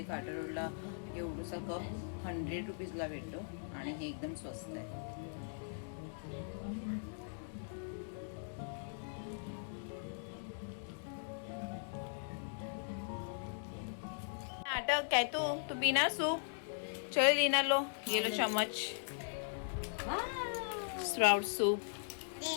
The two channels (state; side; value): silent; right; digital silence